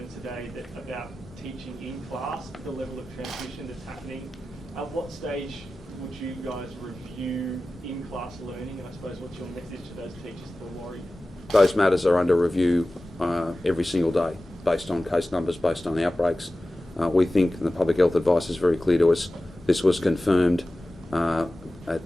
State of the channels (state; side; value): normal; both; correlation 0.96